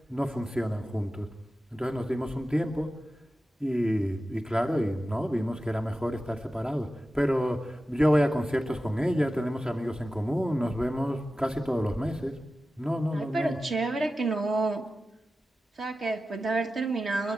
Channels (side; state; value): both; normal; correlation 0.94